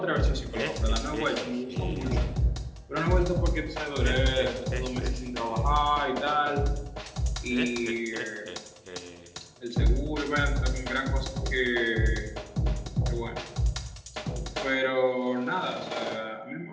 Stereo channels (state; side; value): identical; both; correlation 1.00